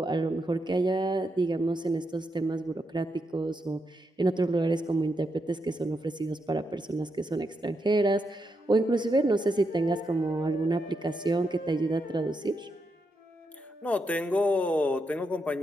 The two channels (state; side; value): normal; both; correlation 0.83